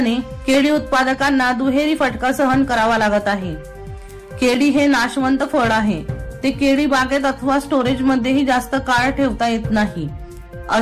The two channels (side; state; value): both; identical; correlation 1.00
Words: केळी उत्पादकांना दुहेरी फटका सहन करावा लागत आहे। केळी हे नाशवंत फळ आहे। ते केळी बागेत अथवा स्टोरेज मध्येही जास्त काळ ठेवता येत नाही।